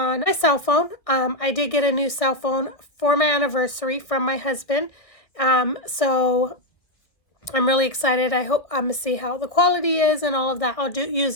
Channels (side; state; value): right; late; 1.6 ms